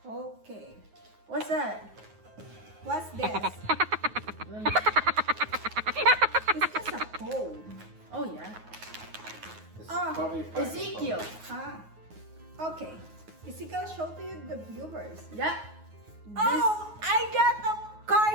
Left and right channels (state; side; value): late; left; 9.4 ms